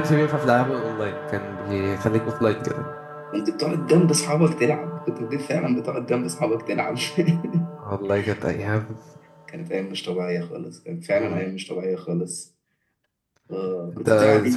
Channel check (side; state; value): both; identical; correlation 1.00